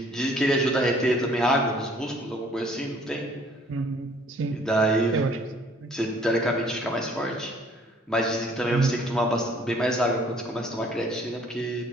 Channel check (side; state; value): both; normal; correlation 0.58